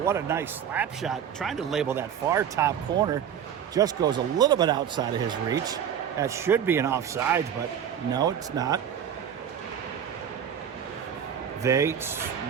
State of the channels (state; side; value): quieter; left; 8.8 dB